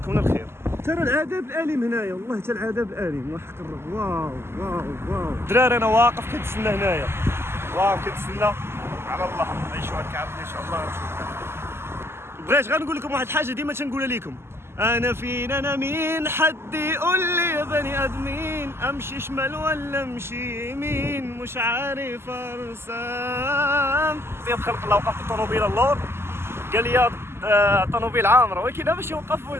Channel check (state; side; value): late; left; 0.12 ms